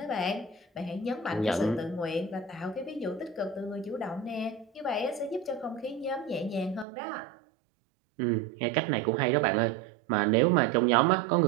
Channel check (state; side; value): drops out; left; at 6.9 s